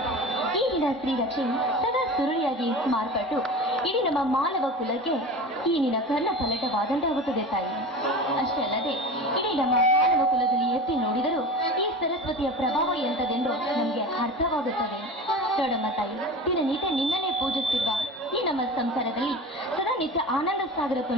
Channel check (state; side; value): normal; both; correlation 0.32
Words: ಈಗಿನ ಸ್ತ್ರೀ ರಕ್ಷೆ ಸದಾ ಸುರುಳಿಯಾಗಿ ಮಾರ್ಪಟ್ಟು ಇಡೀ ನಮ್ಮ ಮಾನವ ಕುಲಕ್ಕೆ ಈ ನಿನ್ನ ಕರ್ಣ ಫಲಟವಾದಂತಾಗುತ್ತದೆ ತಾಯಿ. ಅಷ್ಟೇ ಅಲ್ಲದೆ ಇಡೀ ನಮ್ಮ ಮಾನವ ಕುಲದಲ್ಲಿ ಎತ್ತಿ ನೋಡಿದರೂ ಈ ಸರಸ್ವತಿಯ ಪ್ರಭಾವ ಎಂತದೆಂದು ನಮಗೆ ಅರ್ಥವಾಗುತ್ತದೆ. ನೋಡಮ್ಮ ತಾಯಿ, ದಿನನಿತ್ಯ ನಿನ್ನನ್ನೇ ಪೂಜಿಸುತ್ತಿರುವ ಈ ನಮ್ಮ ಸಂಸಾರದಲ್ಲಿ ಸದಾ ನಿತ್ಯ ಆನಂದ ಸಾಗರ